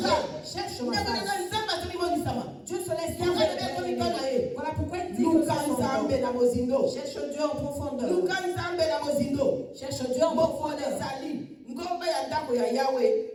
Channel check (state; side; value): identical; both; correlation 1.00